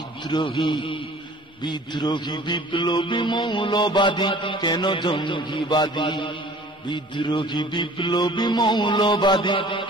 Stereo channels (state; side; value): normal; both; correlation 0.48